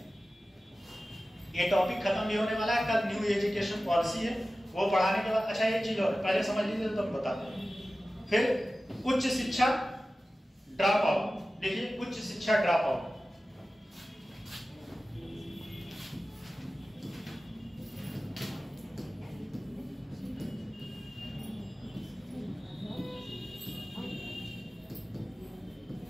ये टॉपिक खत्म भी होने वाला है। कल न्यू एजुकेशन पॉलिसी है, वो पढ़ाने के बाद। अच्छा एक चीज और पहले समझ लीजिए तो हम बताते हैं। फिर उच्च शिक्षा ड्रॉप आउट, देखिए उच्च शिक्षा ड्रॉप आउट।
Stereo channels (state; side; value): normal; both; correlation 0.95